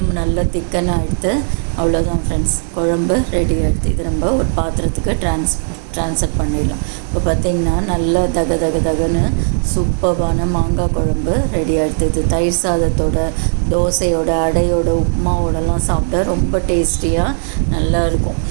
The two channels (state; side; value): silent; left; digital silence